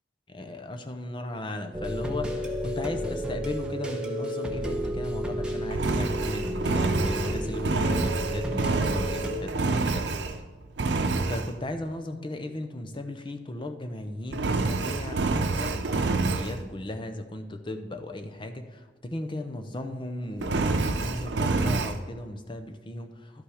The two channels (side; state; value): both; normal; correlation 0.61